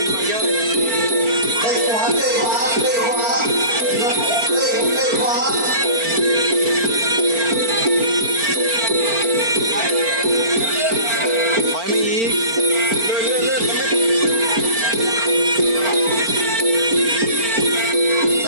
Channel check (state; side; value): late; left; 4.4 ms